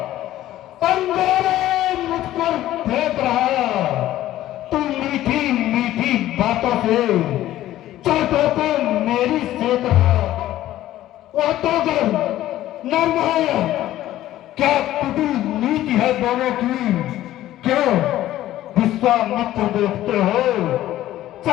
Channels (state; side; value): quieter; right; 14.0 dB